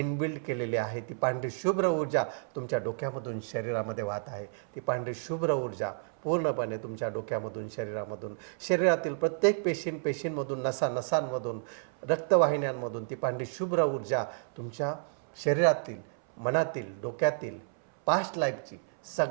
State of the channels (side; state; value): left; silent; 57 dB below the other